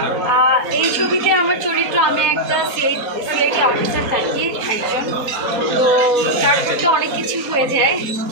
এই ছবিতে আমার চরিত্র, আমি একটা সিআইডি অফিসার থাকি একজন। তো তার মধ্যে অনেক কিছু হয়ে যায়।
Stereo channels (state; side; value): late; left; 4.1 ms